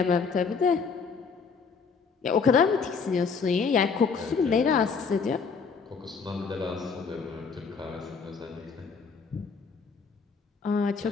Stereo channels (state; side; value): quieter; right; 5.4 dB